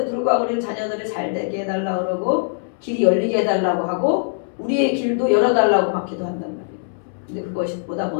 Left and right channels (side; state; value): right; silent; 65 dB below the other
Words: 불구하고 우리는 자녀들을 잘 되게 해달라고 그러고 길이 열리게 해달라고 하고 우리의 길도 열어달라고 막 기도한단 말이에요. 근데 그것보다